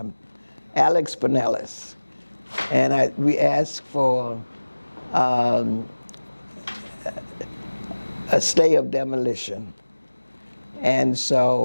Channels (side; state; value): both; inverted; correlation -1.00